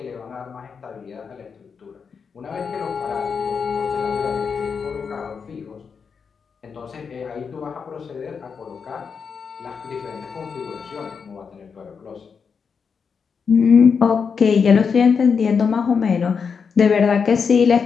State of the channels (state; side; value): quieter; right; 6.0 dB